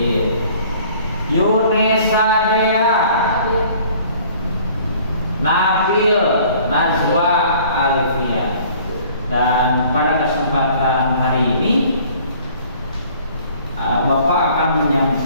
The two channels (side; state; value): both; inverted; correlation -0.53